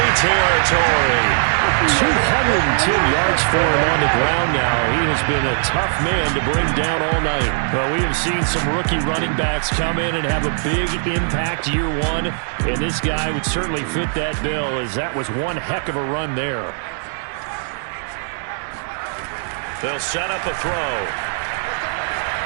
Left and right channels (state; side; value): silent; left; digital silence